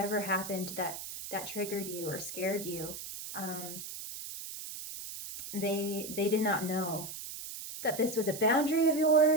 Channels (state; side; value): noise; right; hiss, 9 dB below the sound